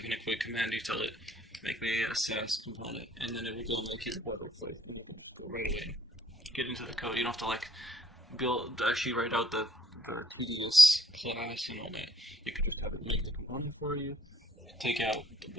in a quick command, you tell it, make me a Sass component, and then it will go make your boilerplate. Go right away. Get into the code. You don't have to like actually write out the tedious class and all that. You can just have it make the component for you, take out the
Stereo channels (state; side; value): normal; both; correlation 0.65